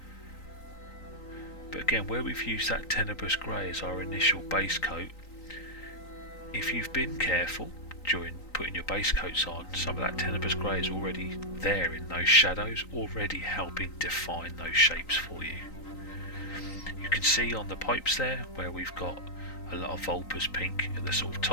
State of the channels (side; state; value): right; late; 3.9 ms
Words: But again, where we've used that Tenebrous Grey as our initial base coat, if you've been careful during putting your base coats on, some of that Tenebrous Grey is already there in those shadows, already helping define those shapes for you. You can see on the pipes there where we've got a lot of Vulpes pink at the sort of